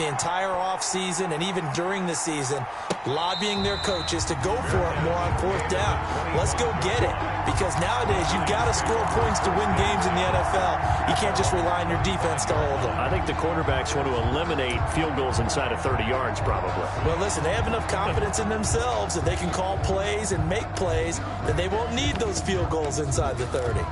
entire offseason and even during the season lobbying their coaches to go for it more on 4th down. Let's go get it, because nowadays you've got to score points to win games in the NFL. You can't just rely on your defense to hold them. I think the quarterbacks want to eliminate field goals inside of 30 yards probably. Well, listen, they have enough confidence in themselves that they can call plays and make plays that they won't need those field goals inside the 30.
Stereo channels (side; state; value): both; identical; correlation 1.00